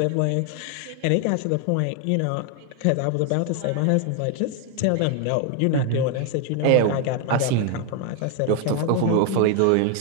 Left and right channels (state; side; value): different; both; correlation 0.01